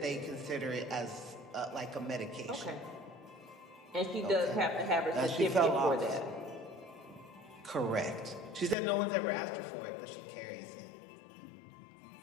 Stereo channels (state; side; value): drops out; right; at 8.8 s